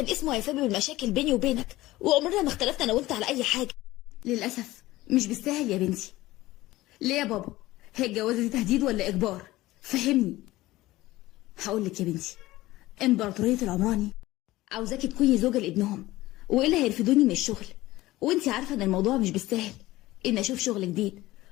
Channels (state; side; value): quieter; right; 17.7 dB